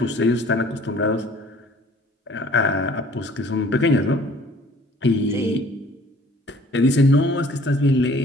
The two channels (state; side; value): normal; both; correlation 0.53